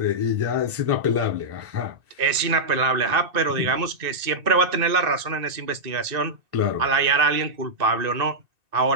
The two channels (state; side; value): late; left; 1.9 ms